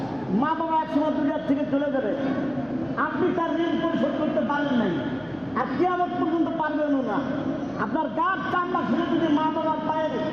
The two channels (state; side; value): noise; left; hum, 27 dB below the sound